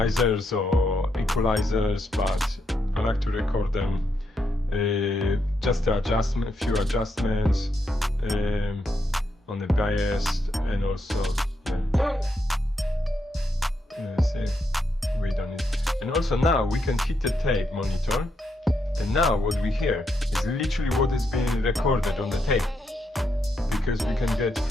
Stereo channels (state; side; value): normal; both; correlation 0.80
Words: or equalizers, but I like to record them just a few adjustments on the bias, and also see, we done it. And also now we can hit the tape monitor, and now what we hear is literally what is being recorded on the tape, because we can get